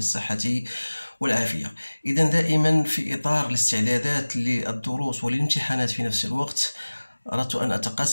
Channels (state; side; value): inverted; both; correlation -1.00